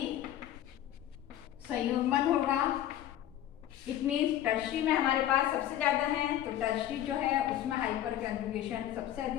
संयुग्मन होगा। इट मीन्स टर्शरी में हमारे पास सबसे ज़्यादा है, तो टर्शरी जो है उसमें हाइपर कंजुगेशन सबसे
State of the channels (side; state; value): right; quieter; 12.2 dB